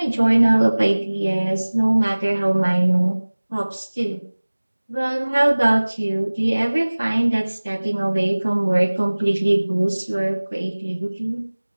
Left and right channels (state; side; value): inverted; both; correlation -1.00